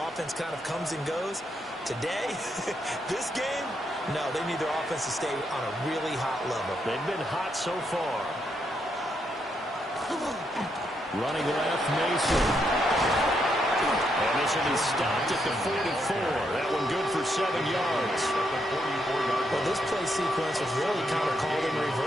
offense kind of comes and goes. Today, this game, no, they need their offense to stay on a really hot level. They've been hot so far. Running left, Mason. And this will be stopped at the 44. That one good for 7 yards. Well, this play sequence was really kind of called in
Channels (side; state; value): both; normal; correlation 0.78